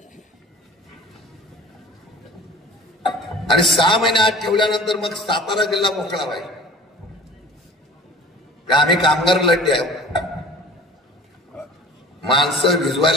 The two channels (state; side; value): normal; both; correlation 0.43